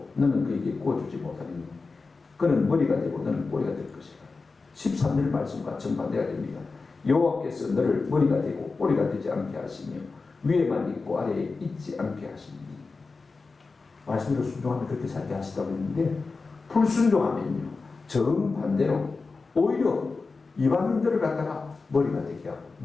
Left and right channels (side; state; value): right; quieter; 4.1 dB